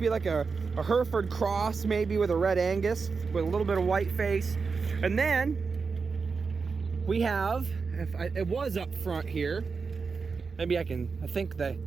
like a Hereford cross, maybe with a red Angus, with a little bit of white face. And then we have, it was up front here. Maybe I think that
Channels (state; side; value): quieter; left; 4.9 dB